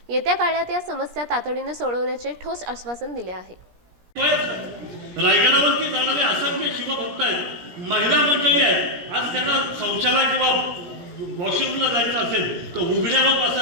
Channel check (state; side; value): late; left; 17 ms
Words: येत्या काळात या समस्या तातडीने सोडवण्याचे ठोस आश्वासन दिले आहे। रायगडावरती जाणारे असंख्य शिवभक्त आहेत, महिला मंडळी आहेत, आज त्यांना शौचालय किंवा वॉशरूमला जायचं असेल तर उघड्यावर